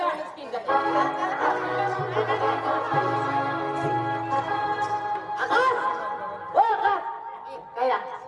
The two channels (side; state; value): both; identical; correlation 1.00